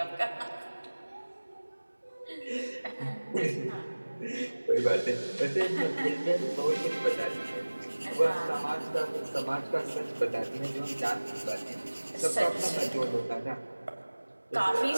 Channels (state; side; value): inverted; both; correlation -1.00